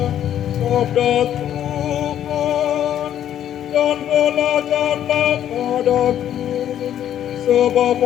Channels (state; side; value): quieter; right; 10.7 dB